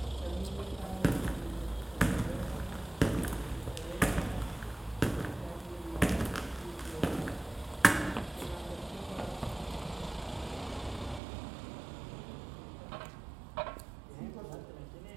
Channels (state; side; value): drops out; left; at 11.2 s